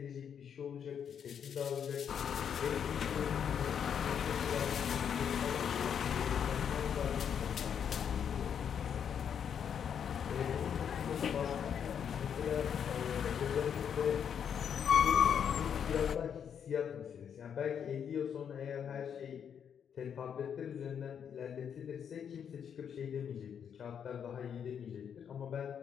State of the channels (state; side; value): quieter; right; 8.0 dB